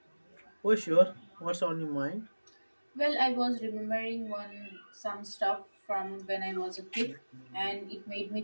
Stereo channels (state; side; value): inverted; both; correlation -1.00